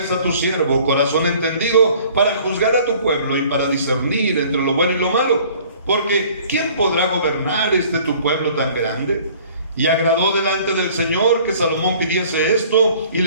a tu siervo corazón entendido para juzgar a tu pueblo y para discernir entre lo bueno y lo malo. Porque ¿quién podrá gobernar tu pueblo tan grande? Y agradó delante del Señor que Salomón pidiese esto, y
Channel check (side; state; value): both; inverted; correlation -0.53